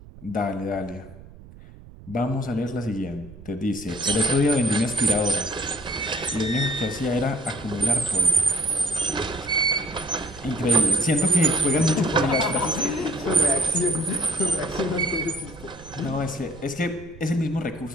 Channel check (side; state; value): right; noise; rumble, 19 dB below the sound